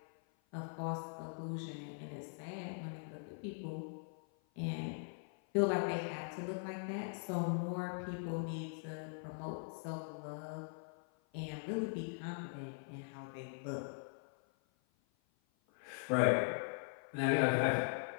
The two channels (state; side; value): silent; right; 50 dB below the other